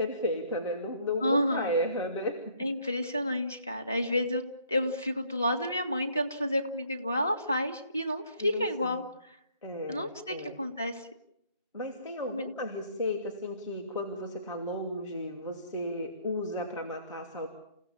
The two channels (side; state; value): both; inverted; correlation -0.64